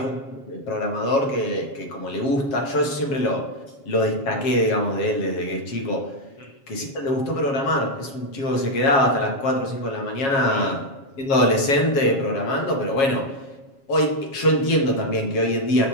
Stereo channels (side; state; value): right; late; 7.3 ms